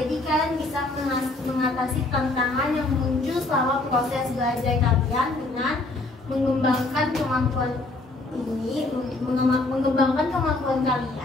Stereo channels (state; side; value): quieter; right; 3.1 dB